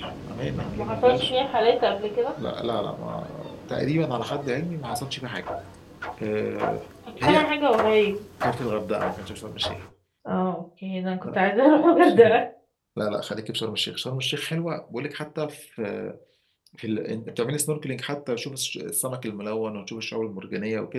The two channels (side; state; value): both; identical; correlation 1.00